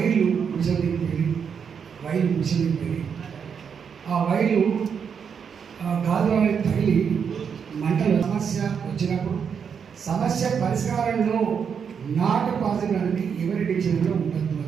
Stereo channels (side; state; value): left; quieter; 6.9 dB